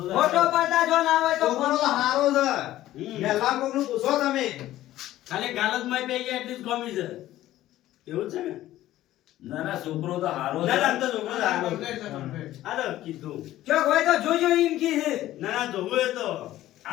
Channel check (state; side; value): quieter; right; 14.4 dB